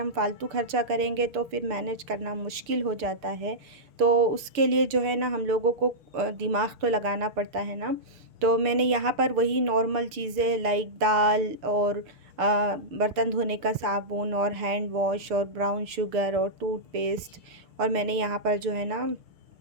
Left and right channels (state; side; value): late; left; 6.8 ms